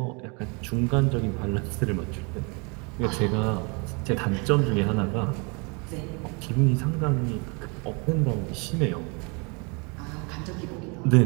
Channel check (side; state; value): left; quieter; 31.9 dB